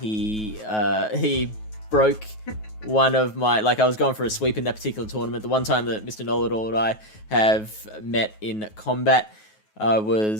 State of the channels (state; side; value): late; right; 9.3 ms